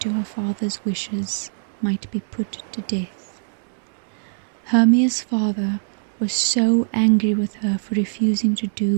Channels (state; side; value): silent; left; digital silence